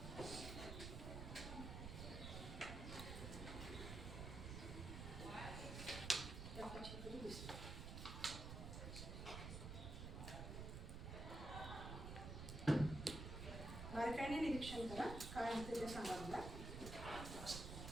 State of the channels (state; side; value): noise; right; rumble, 5 dB below the sound